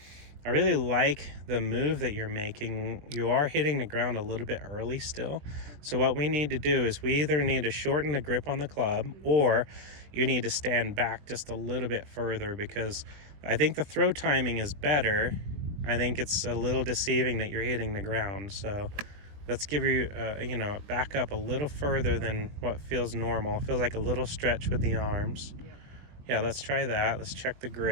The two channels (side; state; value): left; late; 20 ms